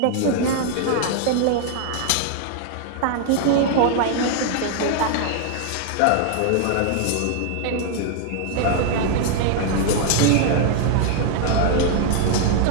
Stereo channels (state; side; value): different; both; correlation 0.00